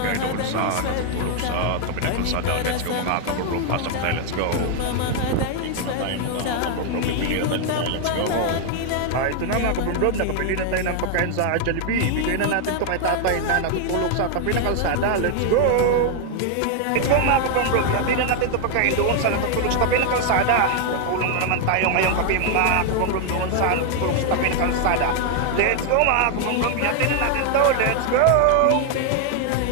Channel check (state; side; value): different; both; correlation 0.00